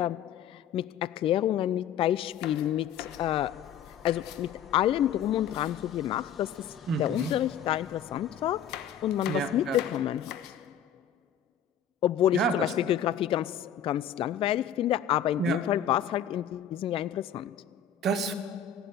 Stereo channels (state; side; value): quieter; right; 8.1 dB